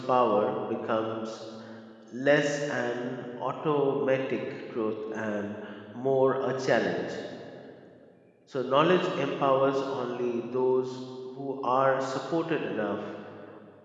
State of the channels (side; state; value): both; identical; correlation 1.00